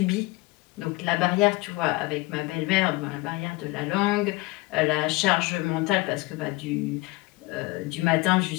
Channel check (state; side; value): quieter; right; 22.3 dB